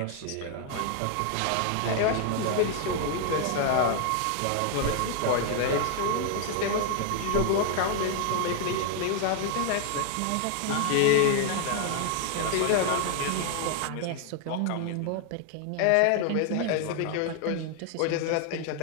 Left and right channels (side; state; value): both; different; correlation 0.00